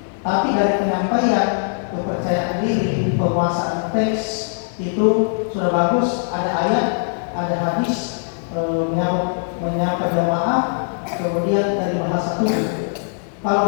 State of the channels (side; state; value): right; silent; digital silence